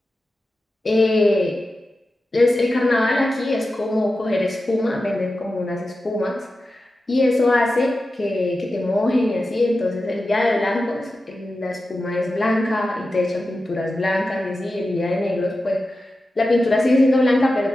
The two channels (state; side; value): normal; both; correlation 0.92